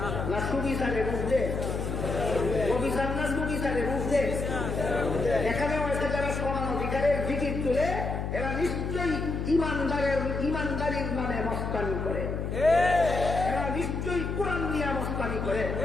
না সুবিচারের ঊর্ধ্বে? অবিচার না সুবিচারের ঊর্ধ্বে? এখানেও এসে যারা সমান অধিকারের জিকির তুলে এরা নিশ্চয়ই ইমানদারির নামে মস্তানি করে, এরা নিশ্চয়ই কোরআন নিয়ে মস্তানি করে,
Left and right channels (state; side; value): noise; left; hum, 3 dB below the sound